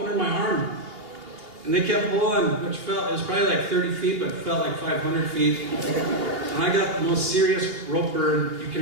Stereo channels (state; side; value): late; left; 2.9 ms